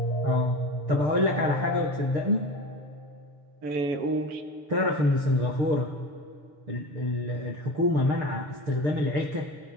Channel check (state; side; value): late; left; 6.8 ms